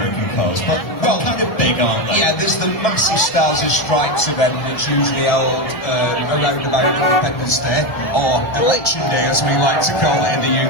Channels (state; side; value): late; right; 1.3 ms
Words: cars, but well, kind of big, aren't they? Yeah, there's the massive Stars and Stripes event that's usually held around about Independence Day, or Election Day as we like to call it in the